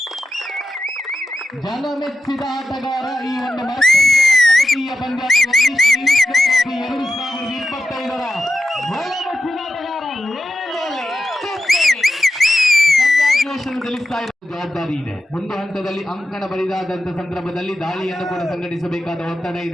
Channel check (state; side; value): normal; both; correlation 0.90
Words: ಜನಮೆಚ್ಚಿದ ಆಟಗಾರ. ಈ ಒಂದು ಕಬಡ್ಡಿಯ ಪಂದ್ಯಾಟದಲ್ಲಿ 2025ರ ಜನಮೆಚ್ಚಿನ ಆಟಗಾರ ಗಳಿಸ್ತಾ ಇರುವ ಜವಾಬ್ದಾರಿ ಇದೆ. ಒಂದು ಹಂತದಲ್ಲಿ ಅಂಕಣ ಬರಿದಾದಂತ ಸಂದರ್ಭದಲ್ಲಿ ದಾಳಿಯನ್ನು ಕೂಡ ಸಂಘಟಿಸಬೇಕಾದ ಒತ್ತಡ